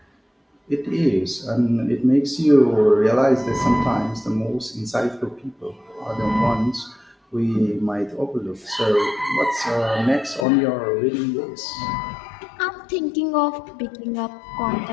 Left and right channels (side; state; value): right; drops out; at 10.5 s